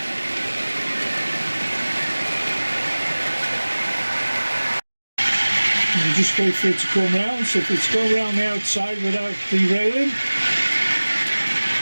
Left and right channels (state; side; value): inverted; both; correlation -1.00